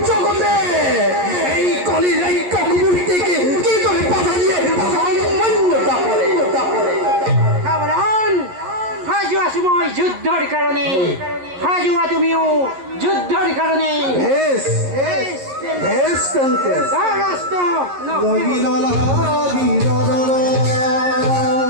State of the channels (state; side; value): late; left; 11 ms